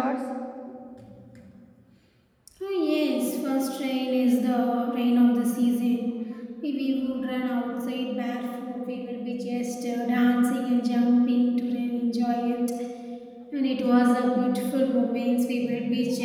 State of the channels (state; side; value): identical; both; correlation 1.00